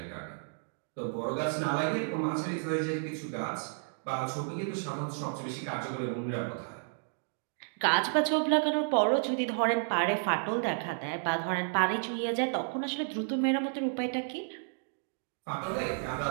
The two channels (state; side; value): silent; left; digital silence